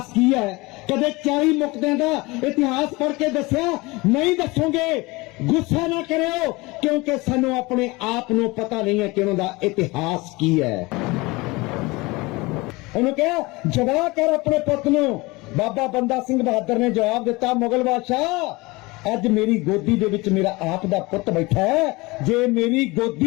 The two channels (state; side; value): quieter; right; 23.4 dB